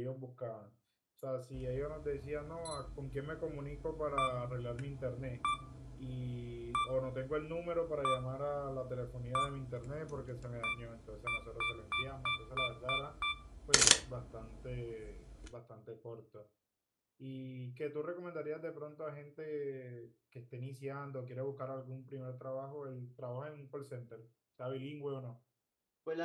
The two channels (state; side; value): identical; both; correlation 1.00